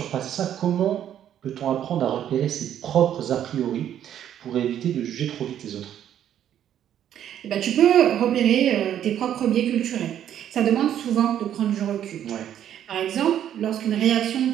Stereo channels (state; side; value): quieter; left; 10.4 dB